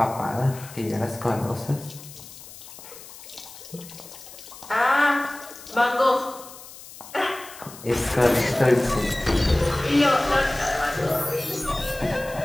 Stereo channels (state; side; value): noise; left; hiss, 17 dB below the sound